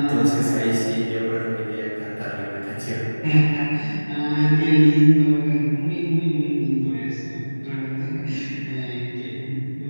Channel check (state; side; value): inverted; both; correlation -1.00